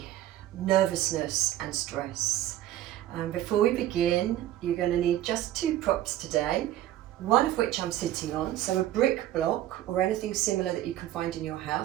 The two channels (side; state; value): left; quieter; 13.4 dB